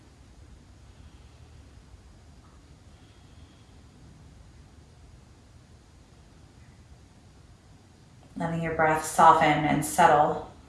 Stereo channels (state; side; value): identical; both; correlation 1.00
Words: Letting your breath soften and settle